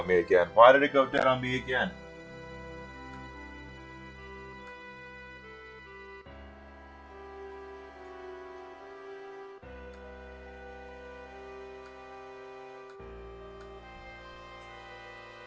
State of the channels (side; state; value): both; identical; correlation 1.00